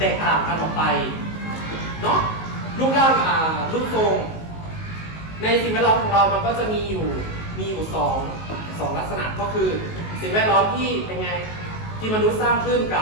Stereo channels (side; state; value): right; late; 19 ms